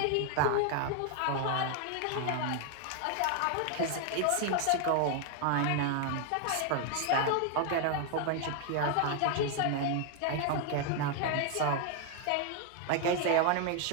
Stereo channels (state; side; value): different; both; correlation 0.00